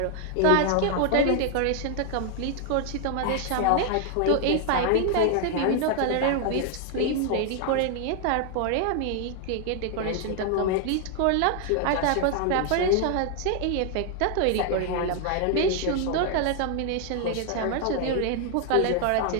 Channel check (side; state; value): both; different; correlation 0.00